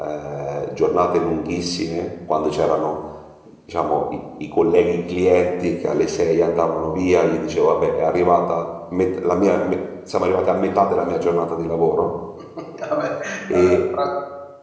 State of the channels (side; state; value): both; identical; correlation 1.00